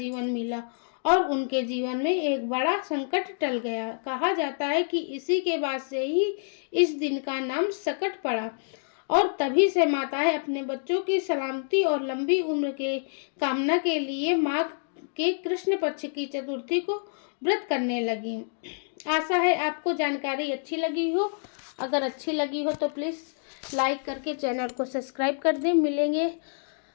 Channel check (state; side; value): silent; right; digital silence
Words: मिला और उनके जीवन में एक बड़ा संकट टल गया। कहा जाता है कि इसी के बाद से ही इस दिन का नाम सकट पड़ा। और तभी से माताएं अपने बच्चों की सलामती और लंबी उम्र के कामना के लिए माघ के कृष्ण पक्ष की चतुर्थी को व्रत करने लगी। आशा है आपको जानकारी अच्छी लगी हो। अगर अच्छी लगी हो तो प्लीज़ लाइक करके चैनल को सब्सक्राइब कर दें। मिलेंगे